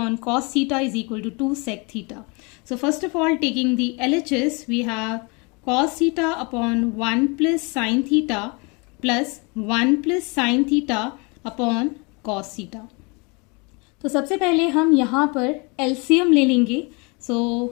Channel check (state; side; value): quieter; right; 30.0 dB